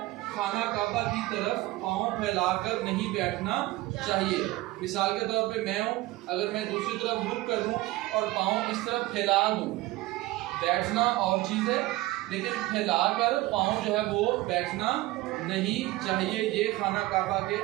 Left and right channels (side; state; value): left; quieter; 18.8 dB